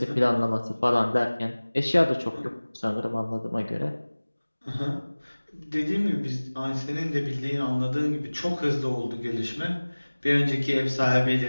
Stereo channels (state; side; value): inverted; both; correlation -1.00